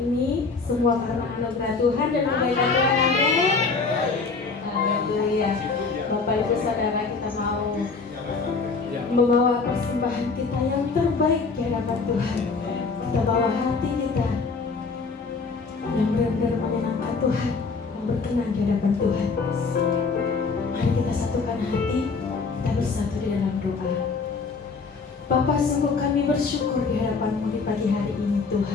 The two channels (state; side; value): quieter; right; 4.5 dB